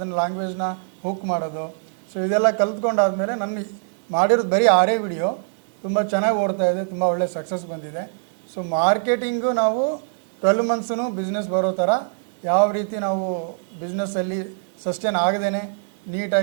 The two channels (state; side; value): silent; left; digital silence